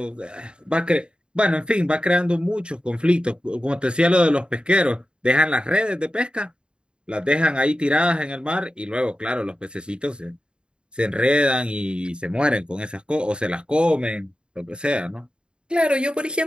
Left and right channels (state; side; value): late; left; 0.052 ms